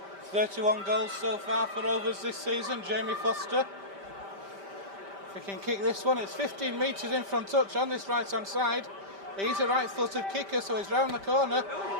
31 goals so far for Rovers this season, Jamie Foster. If he can kick this one, it's 15 metres in from touch on this right-hand side. He's a right-footed kicker, so he's round the corner.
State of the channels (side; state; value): left; late; 5.1 ms